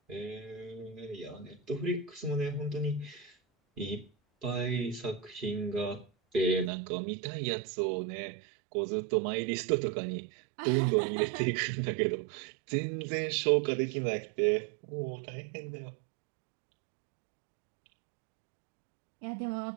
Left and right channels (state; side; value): drops out; left; at 6.7 s